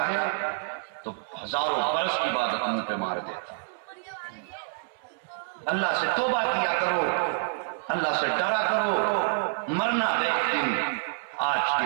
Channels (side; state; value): left; silent; 60 dB below the other